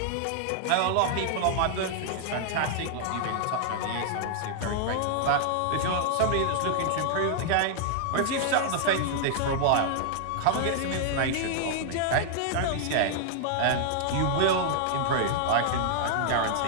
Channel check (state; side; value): different; both; correlation -0.01